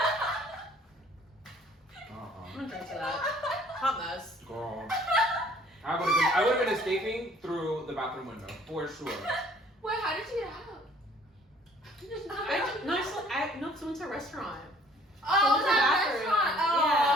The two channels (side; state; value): both; normal; correlation 0.56